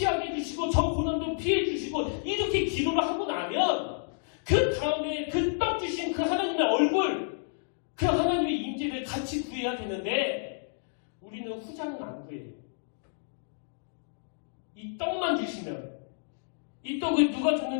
해주시고 저 고난도 피해 주시고 이렇게 기도를 하고 나면 그 다음에 그 떡 주신 그 하나님의 얼굴 그 하나님의 임재를 같이 구해야 되는데 우리는 후자는 안 구해요. 이 떡만 주시면 이 떡을 누가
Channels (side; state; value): right; silent; digital silence